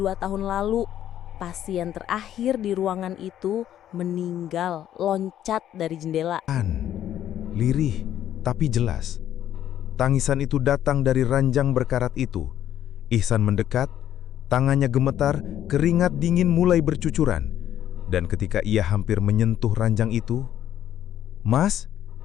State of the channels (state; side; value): quieter; right; 11.2 dB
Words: tahun lalu. Pasien terakhir di ruangan itu meninggal loncat dari jendela." Lirih, tapi jelas. Tangisan itu datang dari ranjang berkarat itu. Ihsan mendekat, tangannya gemetar, keringat dingin mulai bercucuran. Dan ketika ia hampir menyentuh ranjang itu, "Mas?"